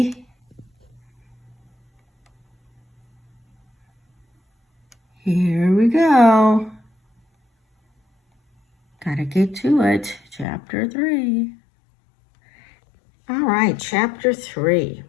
Here we go. Gotta get to it. Chapter 3. All right, Chapter 3.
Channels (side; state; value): right; drops out; at 10.5 s